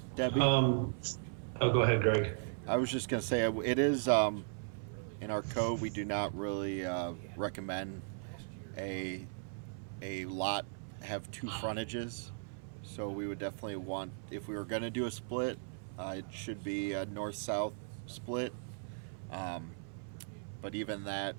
Debbie? Oh, go ahead, Greg. I was just going to say, it is, in our code, we do not really recommend a lot have 2 frontages. So we would definitely want, if we were going to do a split, it should be a north-south split. but even that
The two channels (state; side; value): silent; left; 53 dB below the other